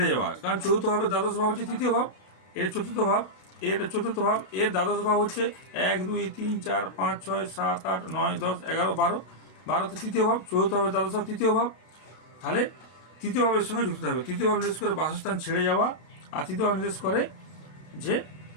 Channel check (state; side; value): late; right; 32 ms